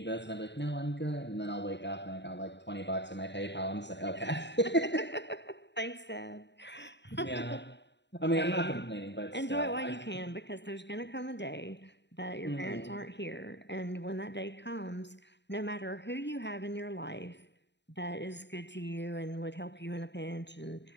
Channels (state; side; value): late; right; 0.51 ms